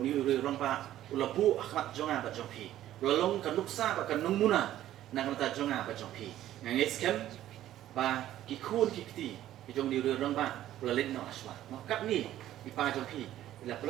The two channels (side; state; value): left; quieter; 13.0 dB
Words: ni rang ba ulapu akhmat jonga ba jongpi ulalong kanuksa ba kanung muna na kanata jonga ba jongpi ngit skem ba ki khun ki kti ki jong ni rang ba rolet no aswa no kat ni ki pa jongpi ila